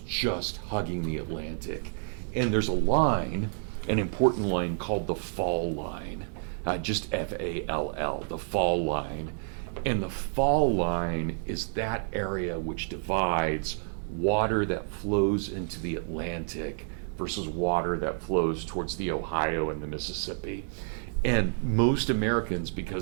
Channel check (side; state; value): left; silent; digital silence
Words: just hugging the Atlantic. And there's a line, an important line called the fall line, just F-A-L-L, the fall line. And the fall line is that area which divides water that flows into the Atlantic versus water that flows towards the Ohio and the Mississippi. And most Americans,